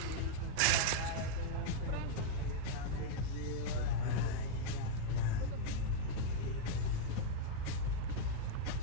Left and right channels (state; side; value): different; both; correlation -0.01